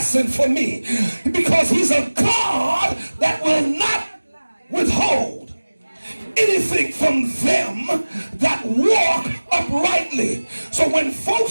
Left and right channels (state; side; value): inverted; both; correlation -1.00